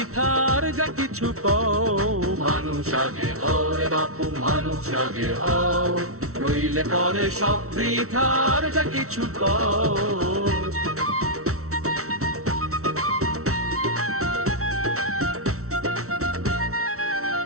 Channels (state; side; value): late; left; 0.63 ms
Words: যা কিছু কও। মানুষ আগে হও রে বাপু, মানুষ আগে হও, নইলে পরে সব বৃথার যা কিছু কও।